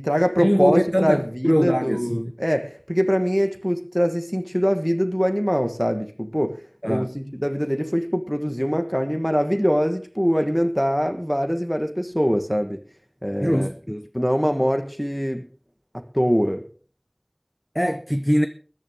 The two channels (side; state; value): both; identical; correlation 1.00